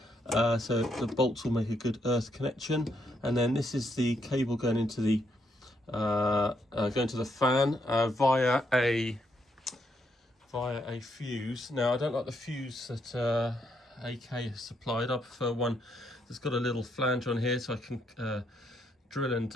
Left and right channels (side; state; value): both; normal; correlation 0.76